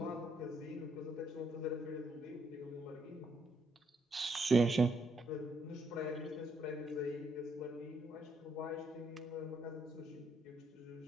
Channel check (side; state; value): both; normal; correlation 0.74